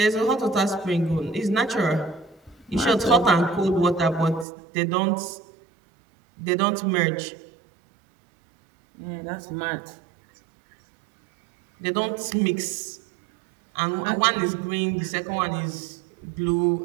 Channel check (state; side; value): drops out; left; at 4.5 s